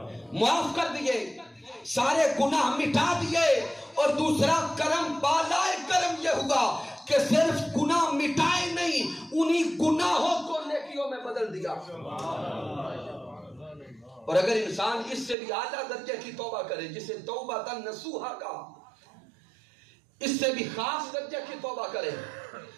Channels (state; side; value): drops out; left; at 15.4 s